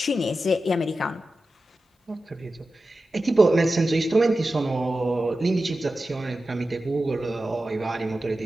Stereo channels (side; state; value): both; normal; correlation 0.93